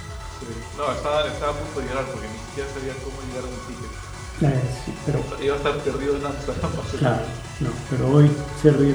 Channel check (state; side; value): identical; both; correlation 1.00